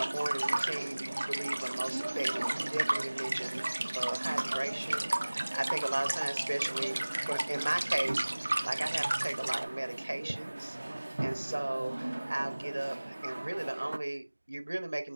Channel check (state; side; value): inverted; both; correlation -1.00